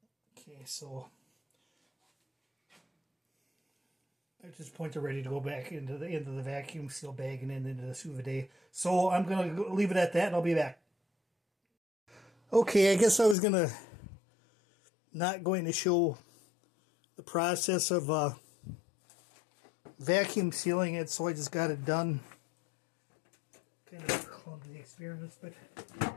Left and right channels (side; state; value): right; drops out; at 13.4 s